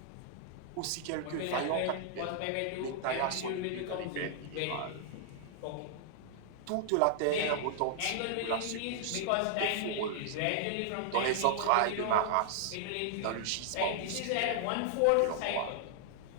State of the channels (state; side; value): different; both; correlation -0.01